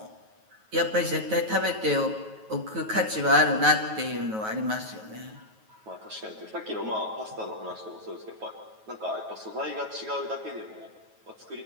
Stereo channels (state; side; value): late; left; 9.3 ms